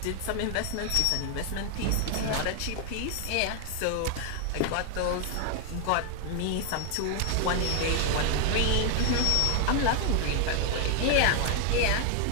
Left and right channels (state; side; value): different; both; correlation 0.00